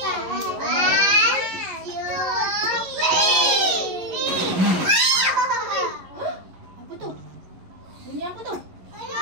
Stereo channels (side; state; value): left; late; 11 ms